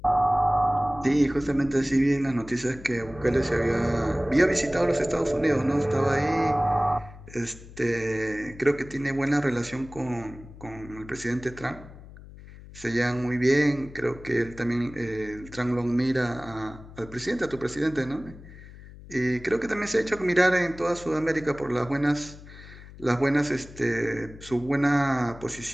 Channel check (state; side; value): noise; left; hum, 17 dB below the sound